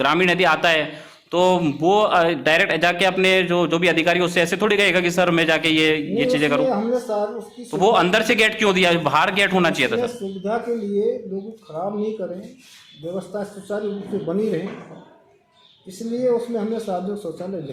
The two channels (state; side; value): identical; both; correlation 1.00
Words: यदि आता है तो वो डायरेक्ट जाके अपने जो भी अधिकारी उससे ऐसे थोड़ी कहेगा कि सर मैं जाके ये चीजें करूँ। तो वो अंदर से गेट क्यों दिया? बाहर गेट होना चाहिए था सर। सुविधा के लिए लोग खराब नहीं करें, व्यवस्था सुचारू रूप से बनी रहे, इसलिए उसमें हमने सार्वजनिक शौचालय